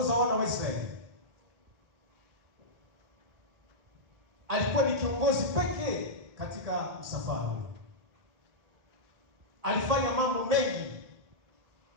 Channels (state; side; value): late; left; 1.8 ms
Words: wana wa Israeli, alikuwa ni kiongozi pekee katika msafara. Alifanya mambo mengi.